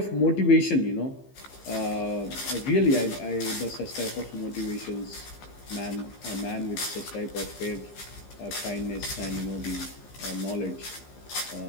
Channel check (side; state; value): right; late; 15 ms